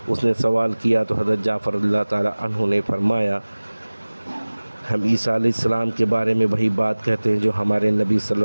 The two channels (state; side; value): inverted; both; correlation -1.00